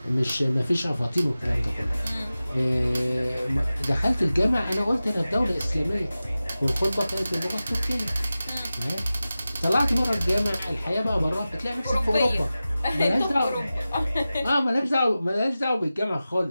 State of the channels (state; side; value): inverted; both; correlation -0.95